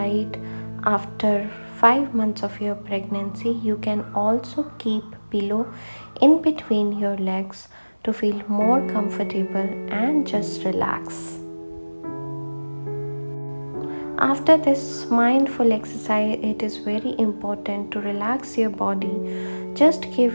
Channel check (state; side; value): inverted; both; correlation -1.00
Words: after 5 months of your pregnancy. You can also keep pillow in between your legs to feel more comfortable and just relax. After this mindful exercise, it is very important to relax your body. Just